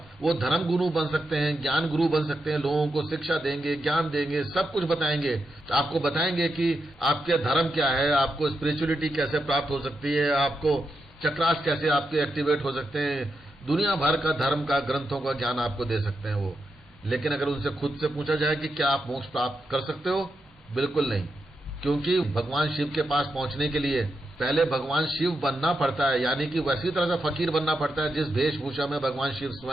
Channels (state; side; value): normal; both; correlation 0.85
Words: वो धर्म गुरु बन सकते हैं, ज्ञान गुरु बन सकते हैं, लोगों को शिक्षा देंगे, ज्ञान देंगे, सब कुछ बताएंगे। आपको बताएंगे कि आपके धर्म क्या है, आपको स्पिरिचुअलिटी कैसे प्राप्त हो सकती है, आपको चक्रास कैसे आपके एक्टिवेट हो सकते हैं, दुनिया भर का धर्म का, ग्रंथों का ज्ञान आपको दे सकते हैं वो। लेकिन अगर उनसे खुद से पूछा जाए कि क्या आप मोक्ष प्राप्त कर सकते हो, बिल्कुल नहीं। क्योंकि भगवान शिव के पास पहुंचने के लिए पहले भगवान शिव बनना पड़ता है, यानी कि वैसी तरह से फकीर बनना पड़ता है जिस वेशभूषा में भगवान शिव